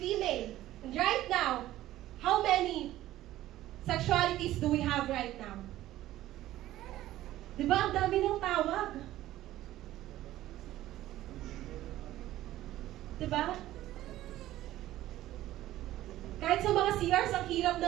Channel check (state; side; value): quieter; left; 14.7 dB